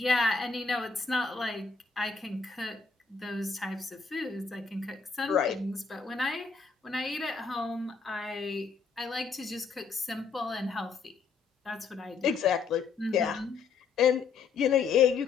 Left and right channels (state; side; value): quieter; right; 5.2 dB